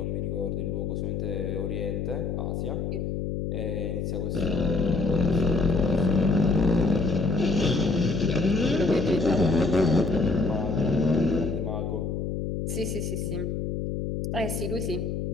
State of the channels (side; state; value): left; noise; hum, 2 dB below the sound